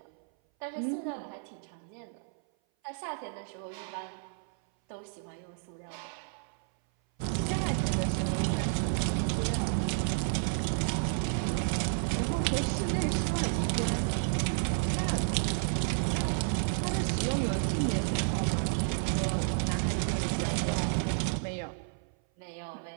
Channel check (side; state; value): left; silent; 57 dB below the other